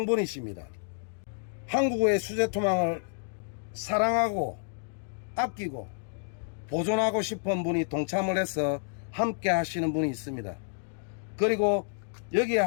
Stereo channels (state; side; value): silent; right; digital silence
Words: 한국의 수제투망을 사랑하고 아끼고 보존하고 싶은 분이 동참을 해서 함께 하시는 분이 있습니다. 그리고